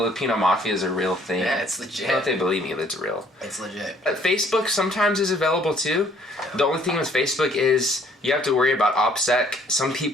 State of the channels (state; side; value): normal; both; correlation 0.60